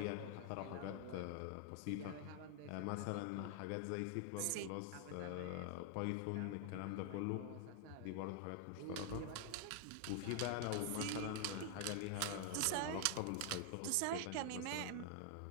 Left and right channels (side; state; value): both; different; correlation 0.00